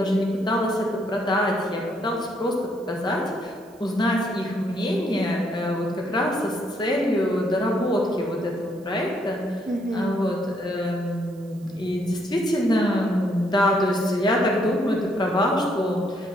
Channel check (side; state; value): right; noise; hiss, 29 dB below the sound